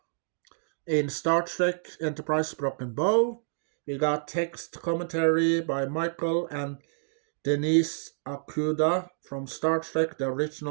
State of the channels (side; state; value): left; silent; digital silence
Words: in Star Trek Enterprise Broken Bow. We got text commentary by Michael and Denise Okuda from Star Trek, the